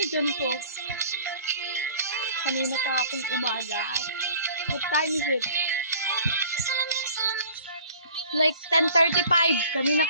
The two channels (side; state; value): both; inverted; correlation -0.49